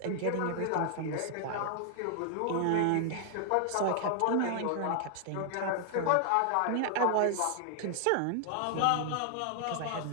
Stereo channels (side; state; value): both; different; correlation 0.00